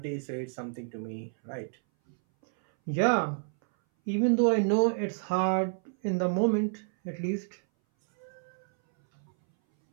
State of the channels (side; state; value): left; silent; 58 dB below the other